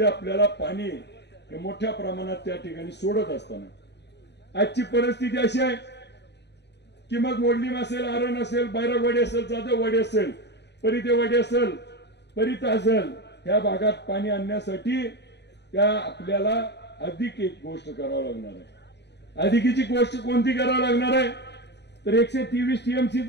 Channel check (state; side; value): late; right; 0.50 ms